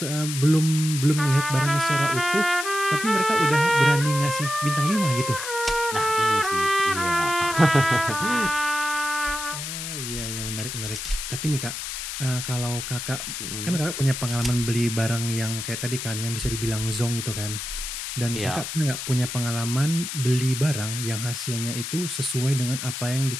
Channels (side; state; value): left; noise; hiss, 6 dB below the sound